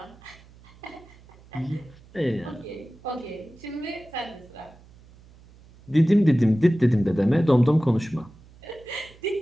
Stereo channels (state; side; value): noise; right; hum, 24 dB below the sound